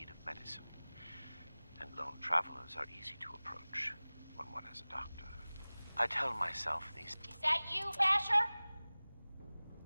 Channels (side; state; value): both; inverted; correlation -0.99